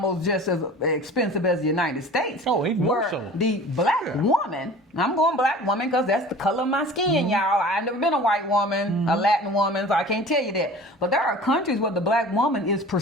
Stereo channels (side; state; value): both; normal; correlation 0.42